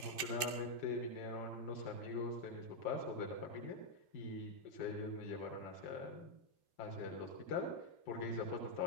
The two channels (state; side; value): late; right; 2.3 ms